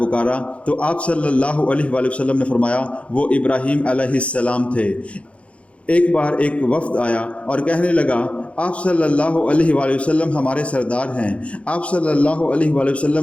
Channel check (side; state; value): right; late; 0.062 ms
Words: تو آپ صلی اللہ علیہ وآلہ وسلم نے فرمایا وہ ابراہیم علیہ السلام تھے۔ ایک بار ایک وفد آیا اور کہنے لگا آپ صلی اللہ علیہ وآلہ وسلم ہمارے سردار ہیں۔ آپ صلی اللہ علیہ وآلہ